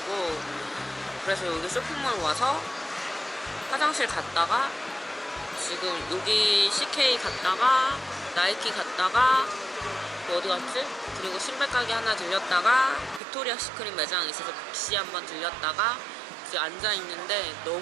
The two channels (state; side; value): drops out; left; at 13.2 s